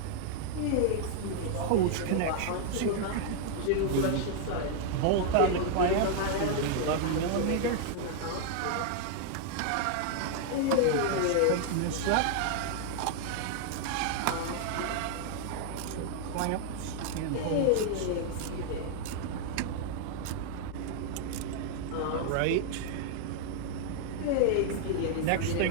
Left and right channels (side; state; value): both; different; correlation 0.00